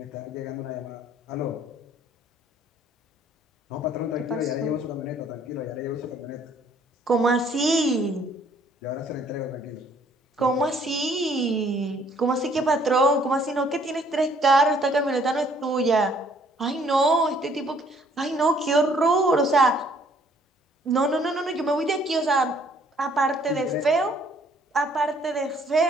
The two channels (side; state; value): both; normal; correlation 0.61